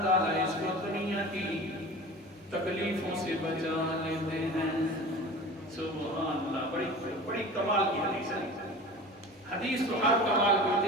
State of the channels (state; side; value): normal; both; correlation 0.37